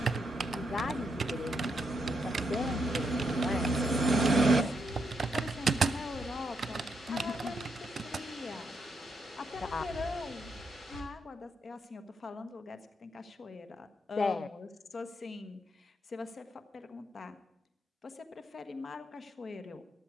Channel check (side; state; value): both; normal; correlation 0.79